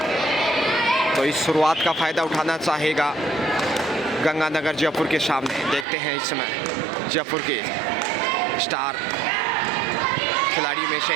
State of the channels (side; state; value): left; drops out; at 5.9 s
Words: तो इस शुरुआत का फायदा उठाना चाहेगा गंगानगर जयपुर के सामने। देखते हैं इस समय जयपुर के स्टार खिलाड़ी में से